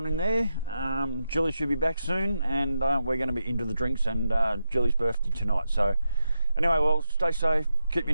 in there. Jilly should be back soon, and we're going to be into the drinks, and Jilly's birthday tonight. So anyway, Wells, stay safe, keep your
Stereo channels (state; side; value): inverted; both; correlation -0.87